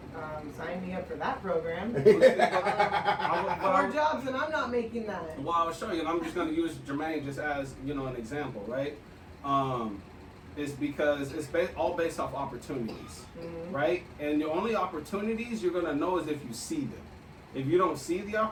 Sign me up for that program. I 4 jobs and I'm not making that. Well, I'll show you, and I'm just going to use Jermaine just as an example, right? It's because it's all based off opportunities, right? And the only opportunities you're going to know is if you see them. If you don't see the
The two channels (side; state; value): both; identical; correlation 1.00